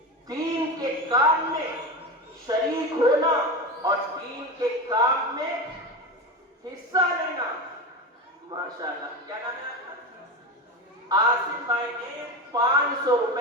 دین کے کام میں شریک ہونا اور دین کے کام میں حصہ لینا. ماشاءاللہ. کیا نام ہے آپ کا؟ آصف بھائی نے 500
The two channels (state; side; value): normal; both; correlation 0.23